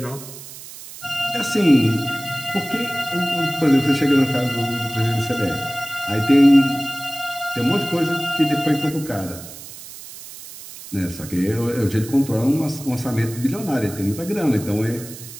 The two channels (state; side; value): noise; right; hiss, 14 dB below the sound